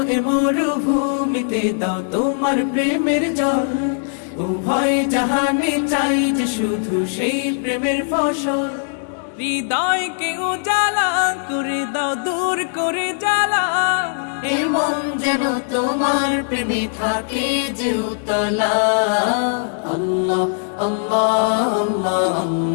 এ মরুভূমিতে দাও তোমার প্রেমের জল উভয় জাহানে চাই যে শুধু সেই প্রেমের ফসল হৃদয়কে উজালা করে দাও দূর করে জ্বালা এমন যেন তোমার প্রেমে থাকে যে উতলা আল্লাহ আল্লাহ আল্লাহ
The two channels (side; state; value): right; silent; digital silence